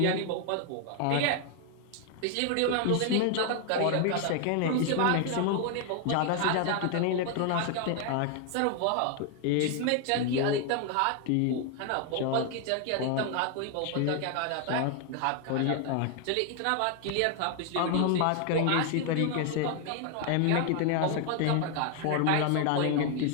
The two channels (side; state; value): both; different; correlation 0.00